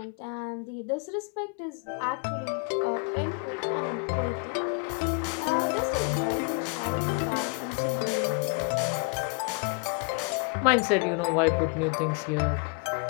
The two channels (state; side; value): quieter; right; 32.6 dB